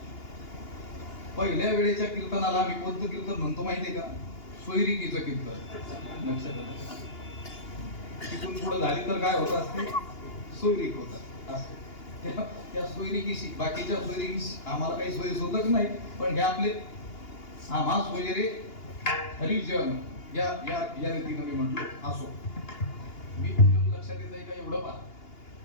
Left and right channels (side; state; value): right; late; 2.8 ms